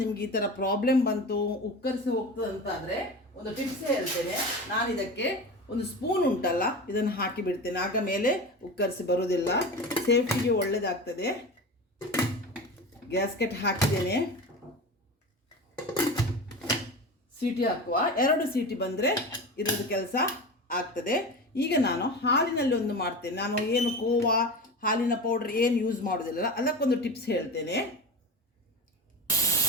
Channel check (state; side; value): normal; both; correlation 0.29